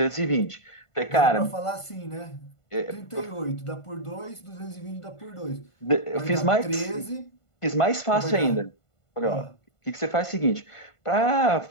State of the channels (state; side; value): late; right; 1.5 ms